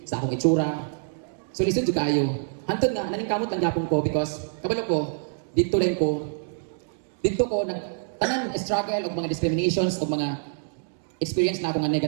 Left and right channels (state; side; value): silent; left; digital silence